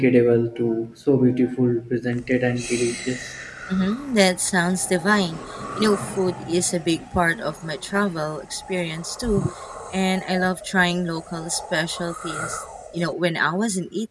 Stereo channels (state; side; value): identical; both; correlation 1.00